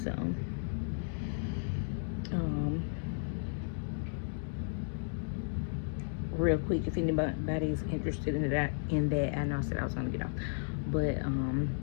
So real quick, if anybody is interested in that, I know I said I was gonna get off, but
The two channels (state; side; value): silent; right; digital silence